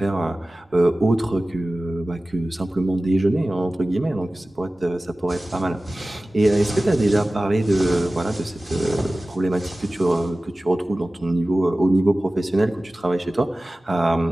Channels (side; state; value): both; normal; correlation 0.97